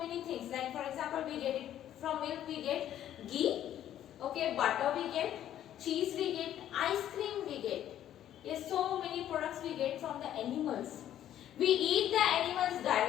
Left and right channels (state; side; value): quieter; right; 11.4 dB